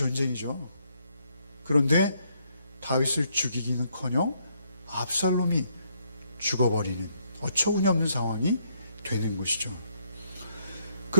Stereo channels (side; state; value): both; inverted; correlation -0.71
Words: 그런데 다윗을 죽이기는커녕 압살롬이 죽어버리는 어처구니없는 상황이 되는 것이죠.